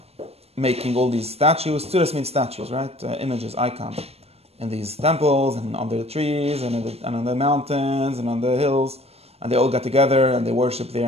making all these statues. Tzuras means statues, right? Images, icons, in these temples and under the trees and on the mountains and on the hills, and they all get together and they worship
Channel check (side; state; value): left; late; 0.29 ms